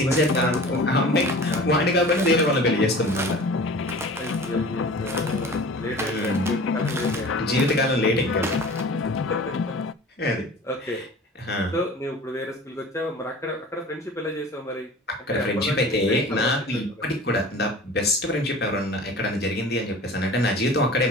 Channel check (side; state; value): both; normal; correlation 0.41